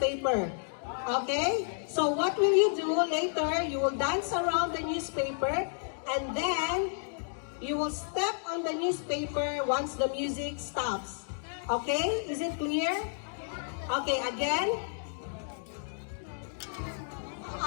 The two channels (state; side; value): silent; right; digital silence